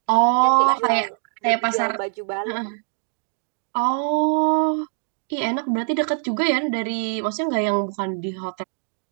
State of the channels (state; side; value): silent; left; 59 dB below the other